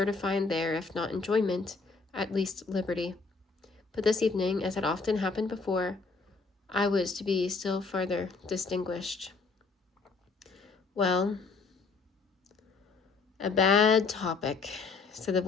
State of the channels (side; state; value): right; quieter; 4.4 dB